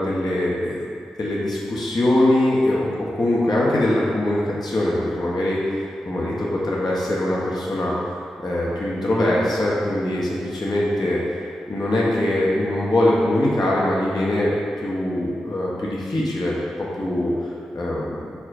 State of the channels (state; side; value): normal; both; correlation 0.90